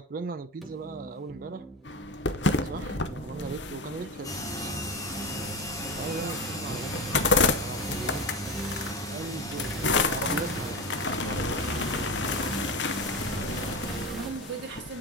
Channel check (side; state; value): both; normal; correlation 0.22